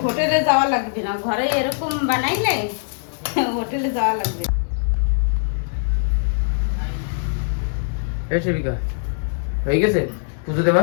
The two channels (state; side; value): silent; right; 65 dB below the other